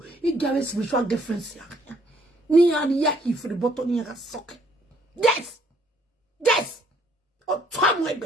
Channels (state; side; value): normal; both; correlation 0.65